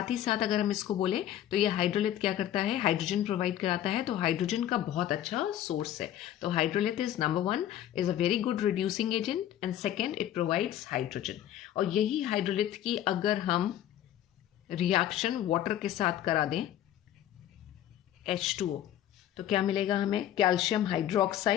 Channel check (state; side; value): quieter; right; 11.8 dB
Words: ही साथ अगर हम इसको बोलें तो ये हाइड्रोलिथ क्या करता है, हाइड्रोजन प्रोवाइड कराता है, तो हाइड्रोजन का बहुत अच्छा सोर्स है। तो hydrolith is number 1, is a very good reducing agent, and second it provides hydrogen. और यही हाइड्रोलिथ की अगर हम रिएक्शन वाटर के साथ करा दें H2O, तो क्या मिलेगा हमें, calcium